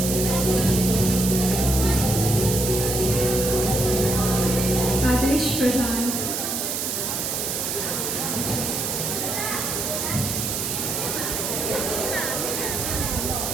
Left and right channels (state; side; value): noise; right; hiss, 1 dB below the sound